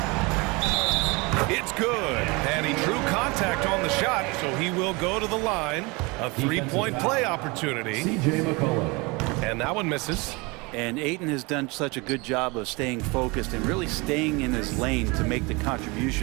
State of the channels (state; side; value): quieter; left; 26.5 dB